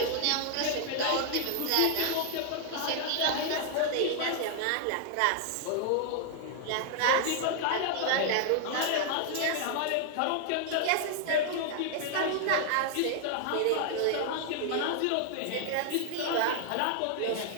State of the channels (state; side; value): different; both; correlation 0.00